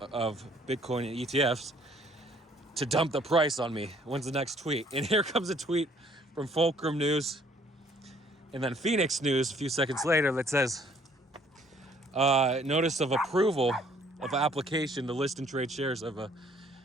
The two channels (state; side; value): normal; both; correlation 0.61